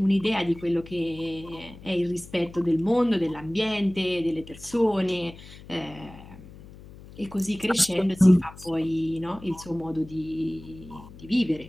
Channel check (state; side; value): noise; left; hum, 18 dB below the sound